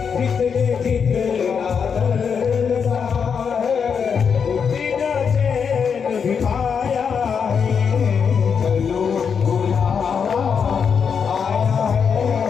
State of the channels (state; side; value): quieter; right; 6.5 dB